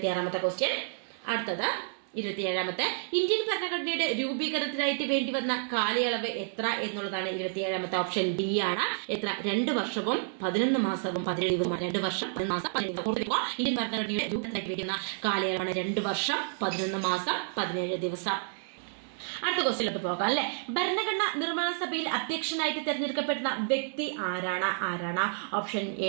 ക്വസ്റ്റ്യൻ. അടുത്തത് 27ാമത്തെ ഇന്ത്യൻ ഭരണഘടനയുടെ രൂപീകരണത്തിനായിട്ട് വേണ്ടി വന്ന കാലയളവ് എത്ര എന്നുള്ളതാണ്. 27ാമത്തെ ഓപ്ഷൻ ഡി ആണ്. എത്ര? 2 വർഷവും 11 മാസവും 17 ദിവസവും. 2 വർഷം 11 മാസം 17 ദിവസം. ഇന്ത്യൻ ഭരണഘടനയുടെ രൂപീകരണത്തിനായിട്ട് വേണ്ടി വന്ന കാലയളവാണ് 2 വർഷം 11 മാസം 17 ദിവസം. അടുത്ത ക്വസ്റ്റ്യനിലോട്ട് പോകാം അല്ലെ. ഭരണഘടന നിർമ്മാണ സഭയിൽ അധ്യക്ഷനായിട്ട് തെരഞ്ഞെടുക്കപ്പെടുന്ന വ്യക്തി ആരാണ്? ഓപ്ഷൻ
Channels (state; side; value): silent; left; digital silence